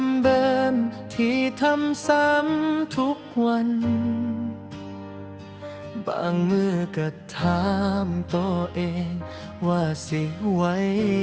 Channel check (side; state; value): both; identical; correlation 1.00